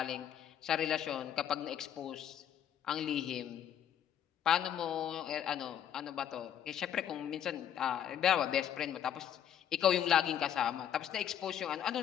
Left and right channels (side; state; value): right; quieter; 9.8 dB